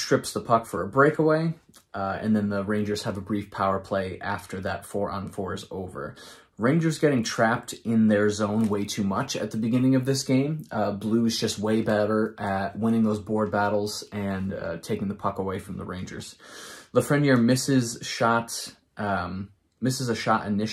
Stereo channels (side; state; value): both; identical; correlation 1.00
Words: the puck for a breakaway, and then the Rangers have a brief power play after that 4-on-4 is over. Rangers getting trapped in their zone way too much at the beginning of this game. Blues just way better at winning those board battles and taking the puck away from the Rangers. Lafreniere misses a shot